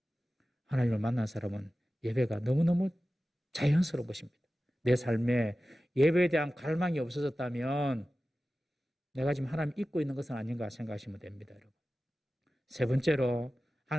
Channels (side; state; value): both; normal; correlation 0.95